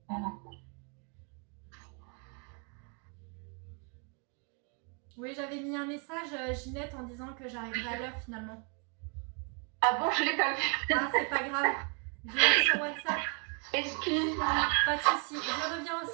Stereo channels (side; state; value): left; quieter; 36.6 dB